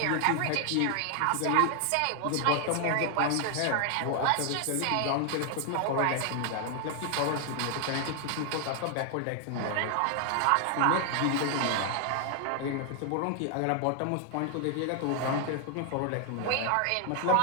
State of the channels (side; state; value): both; different; correlation 0.00